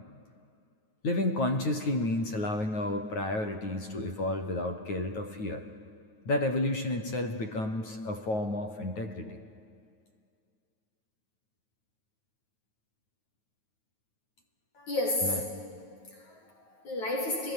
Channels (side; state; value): right; late; 9.3 ms